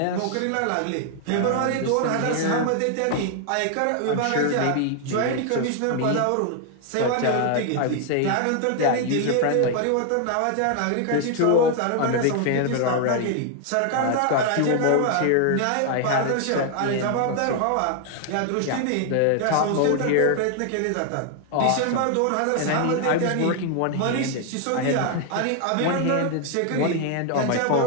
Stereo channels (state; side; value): different; both; correlation 0.00